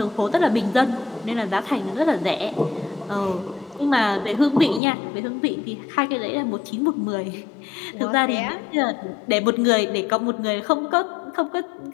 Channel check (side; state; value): right; drops out; at 4.8 s